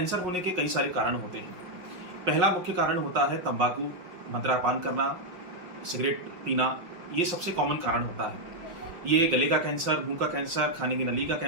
होने के कई सारे कारण होते हैं। पहला मुख्य कारण होता है तंबाकू, मदिरापान करना, सिगरेट पीना, ये सबसे कॉमन कारण होता है। ये गले का कैंसर, मुंह का कैंसर, खाने की नली का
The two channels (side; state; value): left; late; 5.5 ms